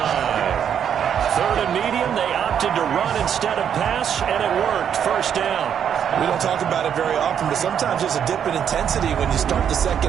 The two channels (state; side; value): quieter; left; 8.6 dB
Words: 3rd and medium, they opted to run instead of pass, and it worked. First down. We don't talk about it very often, but sometimes there's a dip in intensity when you start the